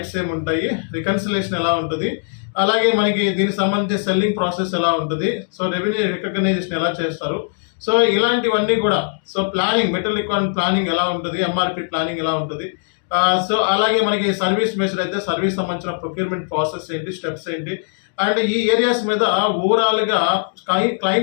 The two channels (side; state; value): right; silent; 66 dB below the other